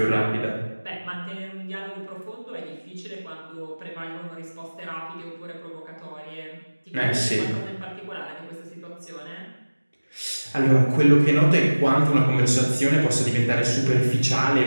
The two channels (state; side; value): inverted; both; correlation -1.00